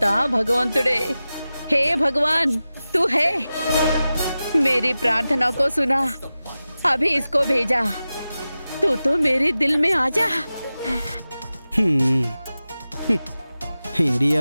భగవంతుడే. హే భగవాన్, తూ హే, मेरी प्रार्थना को सुना, अभी इसको भेजा, तू तो मेरे दिल में आ जा. హ్మ్. హ్మ్.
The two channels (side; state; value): both; inverted; correlation -0.94